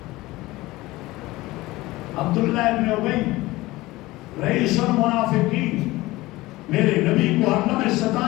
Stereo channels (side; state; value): right; quieter; 19.3 dB